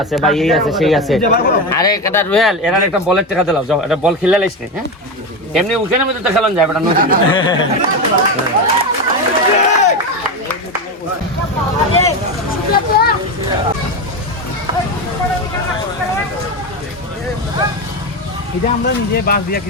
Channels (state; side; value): normal; both; correlation 0.16